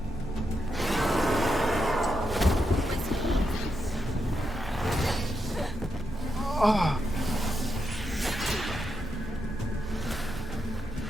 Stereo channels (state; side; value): normal; both; correlation 0.84